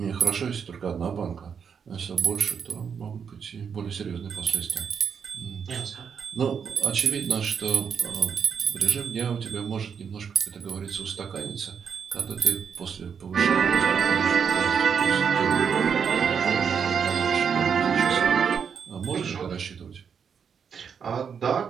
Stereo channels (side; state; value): left; quieter; 6.9 dB